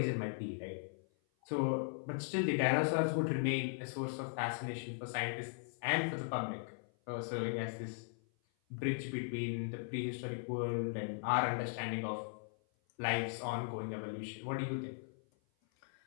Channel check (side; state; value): right; silent; 52 dB below the other